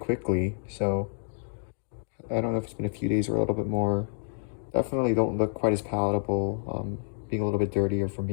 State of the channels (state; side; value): silent; right; digital silence